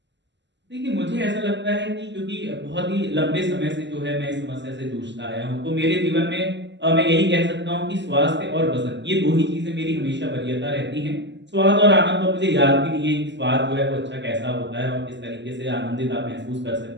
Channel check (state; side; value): late; left; 0.52 ms